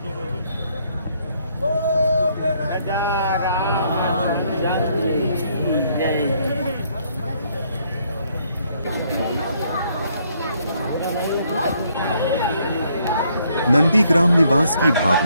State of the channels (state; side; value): inverted; both; correlation -0.70